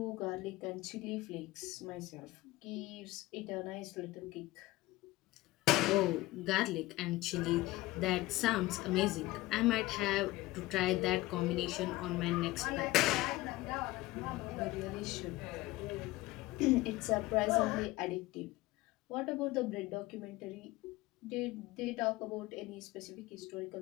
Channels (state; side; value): quieter; right; 18.8 dB